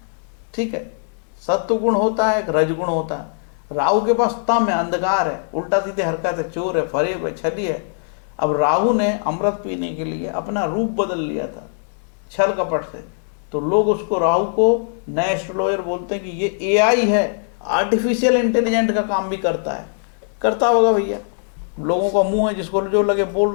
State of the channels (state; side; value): silent; right; 65 dB below the other